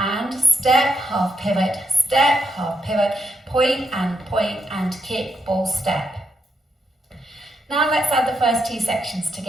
step, half pivot, point and kick ball step. Now let's add the first 2 sections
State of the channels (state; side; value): normal; both; correlation 0.81